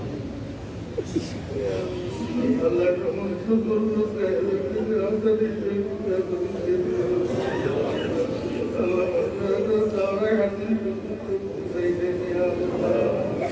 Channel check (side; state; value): both; identical; correlation 1.00